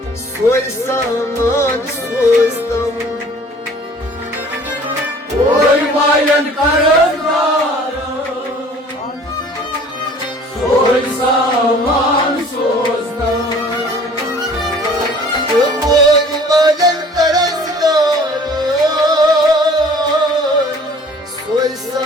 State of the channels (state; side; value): normal; both; correlation 0.50